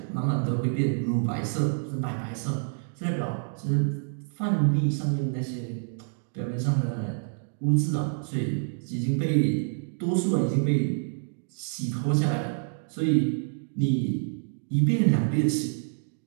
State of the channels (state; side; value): silent; left; digital silence